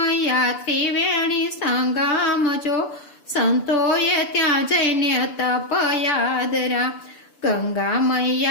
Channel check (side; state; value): right; late; 6.8 ms